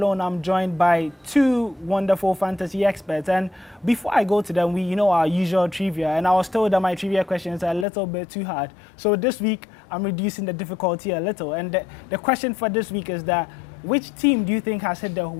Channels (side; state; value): right; drops out; at 7.9 s